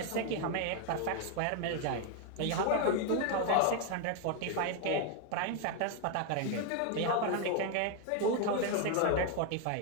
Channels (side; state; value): both; different; correlation 0.00